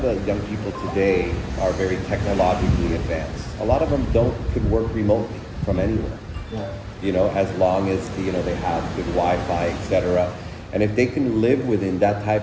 the young people today are very technologically advanced. A lot of them could work remotely from anywhere. You know, as long as they have good Wi-Fi, etc. And if they can live within that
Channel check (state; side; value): identical; both; correlation 1.00